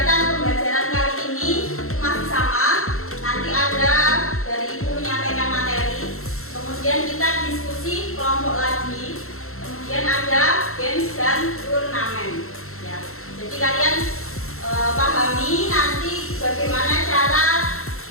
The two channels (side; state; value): right; late; 0.63 ms